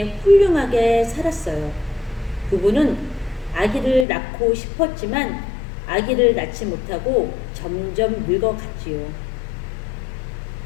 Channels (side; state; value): right; drops out; at 4.0 s